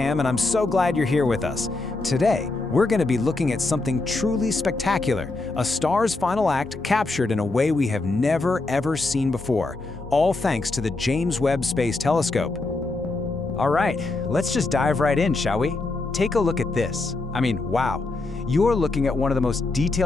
and I'm so glad you're here with us. Today, we're going to be looking at something truly spectacular, a star's final act captured in a way we have never ever seen before, all thanks to the James Webb Space Telescope. All right, let's just dive right in, shall we? Take a look at this. Wow. You're looking at one of the most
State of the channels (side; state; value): right; quieter; 3.3 dB